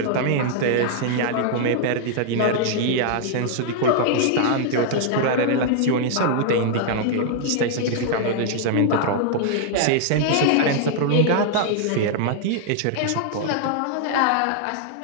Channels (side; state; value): both; different; correlation -0.01